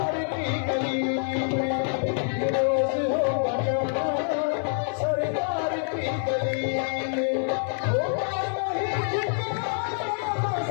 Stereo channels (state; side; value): silent; right; 56 dB below the other